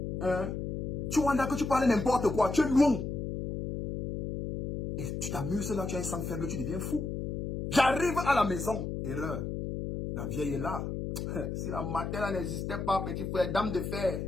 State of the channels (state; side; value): noise; left; hum, 3 dB below the sound